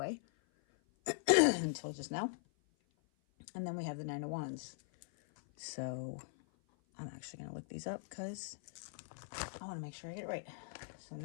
until just now. And then we have the Nine of Wands. So I'm actually going to look these up because I want to make sure I get it right. So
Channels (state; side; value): silent; right; 51 dB below the other